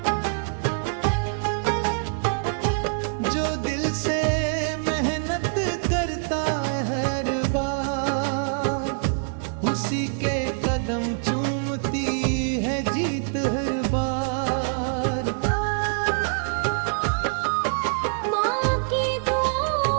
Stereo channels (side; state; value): left; silent; digital silence